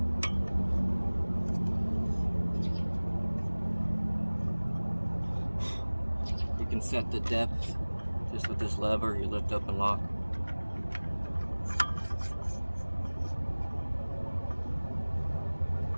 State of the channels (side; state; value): both; inverted; correlation -1.00